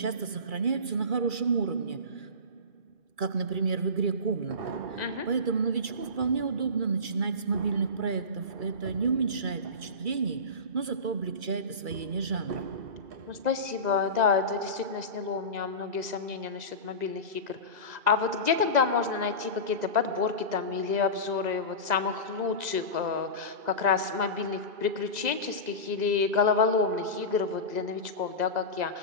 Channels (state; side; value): late; left; 2.3 ms